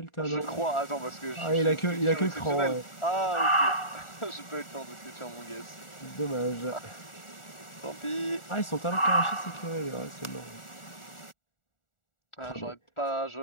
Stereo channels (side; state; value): right; late; 1.4 ms